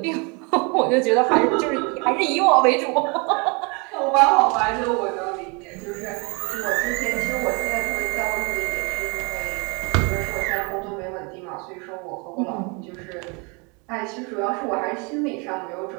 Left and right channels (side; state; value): left; quieter; 31.3 dB